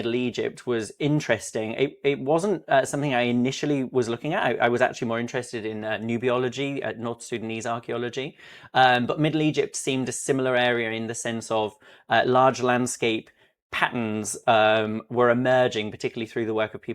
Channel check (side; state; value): both; identical; correlation 1.00